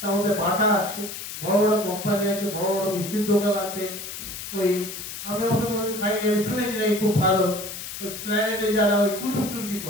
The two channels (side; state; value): left; noise; hiss, 9 dB below the sound